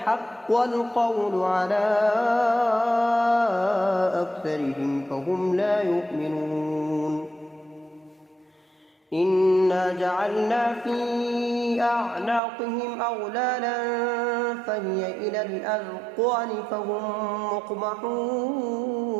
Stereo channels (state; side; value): drops out; left; at 12.4 s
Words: القول على أكثرهم فهم لا يؤمنون إنا جعلنا في أعناقهم أغلالا فهي إلى الأذقان فهم